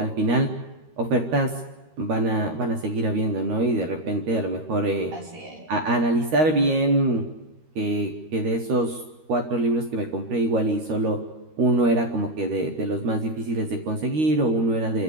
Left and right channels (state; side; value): late; left; 13 ms